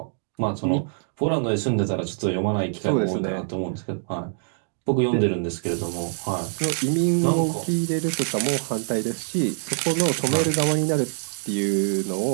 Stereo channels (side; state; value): left; silent; digital silence